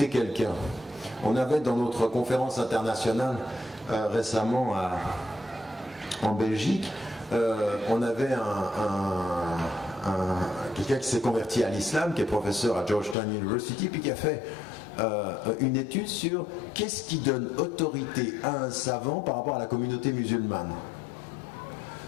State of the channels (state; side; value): drops out; right; at 13.2 s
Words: quelqu'un? On avait dans notre conférence internationale récemment en Belgique, on avait quelqu'un qui s'est converti à l'islam, qui est professeur à Georgetown University, puis qui a fait une étude sur qu'est-ce qui donne autorité à un savant par rapport à la communauté musulmane.